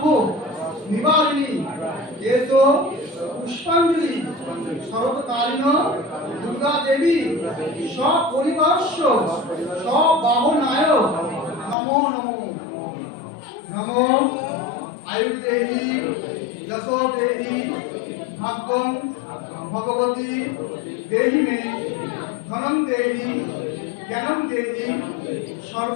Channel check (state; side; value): drops out; right; at 11.8 s